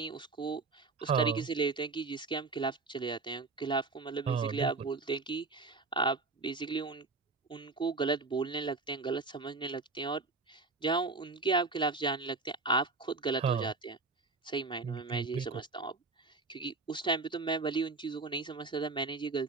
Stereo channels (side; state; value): left; quieter; 3.8 dB